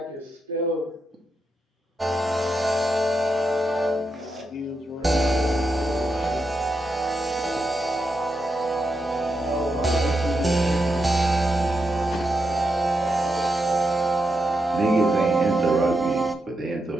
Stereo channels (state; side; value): normal; both; correlation 0.85